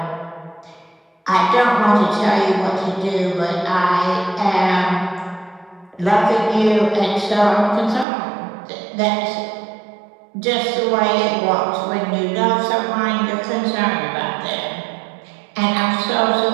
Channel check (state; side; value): drops out; left; at 8.1 s